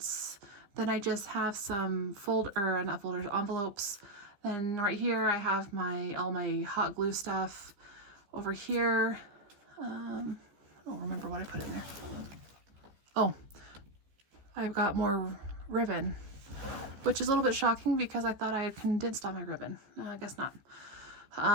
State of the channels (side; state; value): left; late; 15 ms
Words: Then I just have some envelopes. And right here I have all my hot glue stuff. Over here, I don't remember what I put in there. Oh, I've got more ribbon, which is a little bit shocking because I thought I had condensed all my ribbon. No, I guess not.